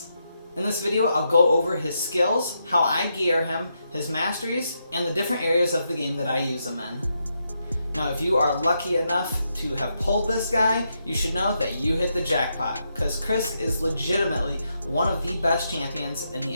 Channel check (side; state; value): both; inverted; correlation -0.82